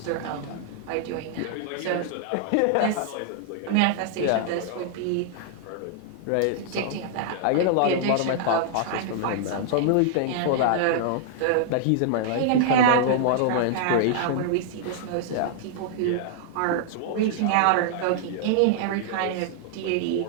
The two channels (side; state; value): both; different; correlation -0.01